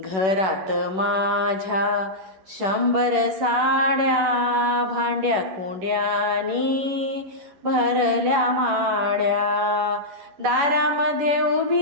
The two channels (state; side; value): late; left; 10 ms